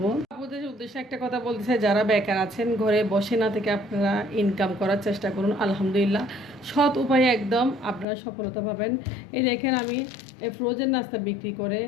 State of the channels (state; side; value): drops out; right; at 8.1 s